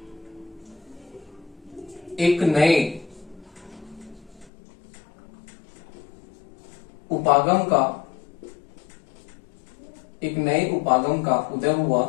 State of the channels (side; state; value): right; drops out; at 4.5 s